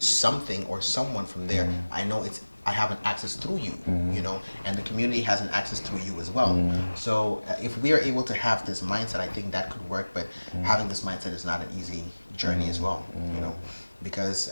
or someone from there, I know I have an access through you, you know, and the community has an access through you as well. So if we are able to have this mindset, I think that could work, but having this mindset is not an easy journey as well, you know, because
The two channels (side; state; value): both; inverted; correlation -1.00